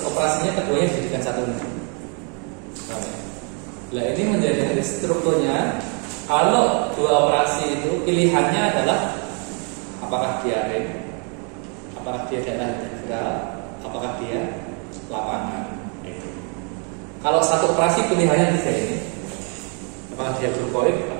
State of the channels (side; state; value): left; quieter; 37.8 dB